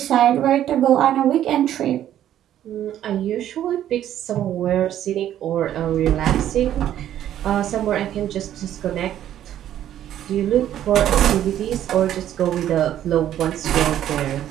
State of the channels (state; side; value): quieter; left; 11.4 dB